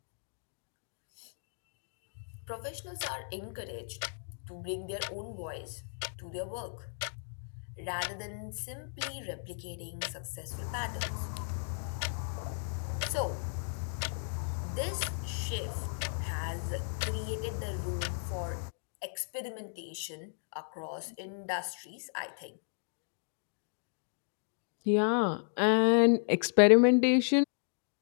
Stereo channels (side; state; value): right; silent; digital silence